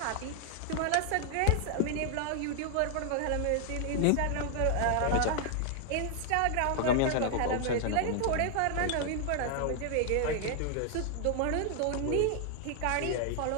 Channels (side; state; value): both; different; correlation 0.00